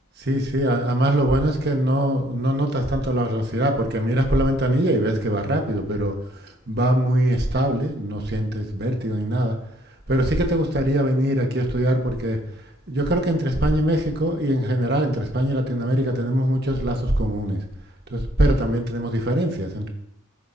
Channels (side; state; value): both; normal; correlation 0.65